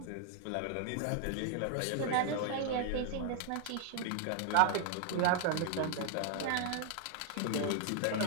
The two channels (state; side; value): different; both; correlation 0.00